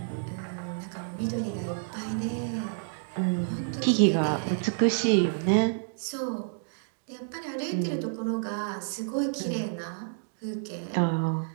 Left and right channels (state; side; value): silent; left; digital silence